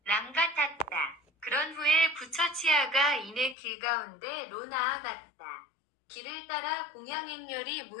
랑 같았다. 그런 후에 부처치아가 이내 길 가운데로 나아갔다. 길을 따라 공양행렬이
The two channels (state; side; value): drops out; right; at 3.6 s